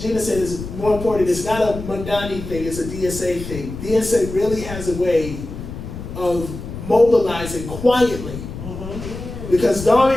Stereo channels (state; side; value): noise; left; rumble, 10 dB below the sound